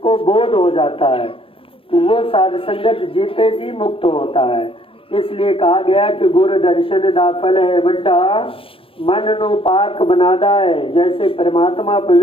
बोध हो जाता है तो वो साध संगत जीते जी मुक्त होता है। इसलिए कहा गया कि गुरु दर्शन दा फल है बड़ा, मन नो पाक बनादा है। जैसे परमात्मा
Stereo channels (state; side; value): late; right; 0.26 ms